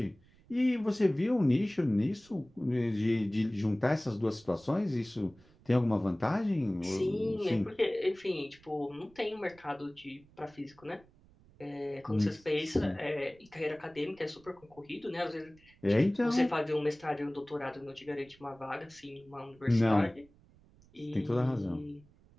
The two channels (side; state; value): right; noise; rumble, 28 dB below the sound